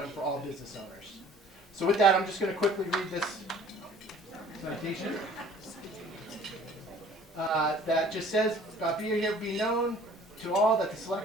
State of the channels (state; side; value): normal; both; correlation 0.51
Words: for all business owners. So with that, I'm just going to quickly read this citation that just says, be known to all that the